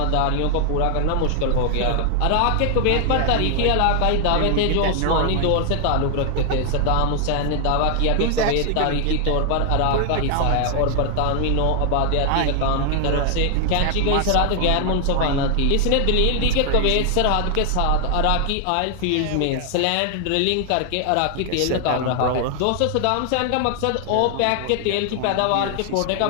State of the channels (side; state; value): both; different; correlation 0.00